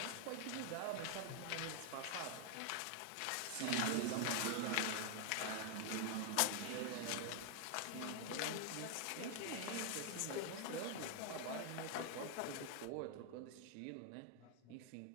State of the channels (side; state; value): both; different; correlation 0.00